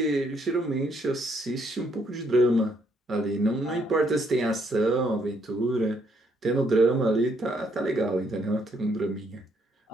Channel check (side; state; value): both; normal; correlation 0.71